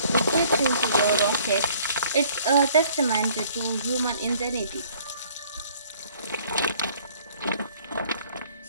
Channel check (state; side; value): inverted; both; correlation -0.57